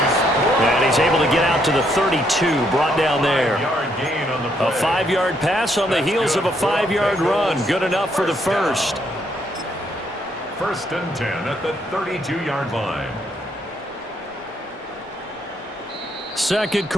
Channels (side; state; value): both; normal; correlation 0.73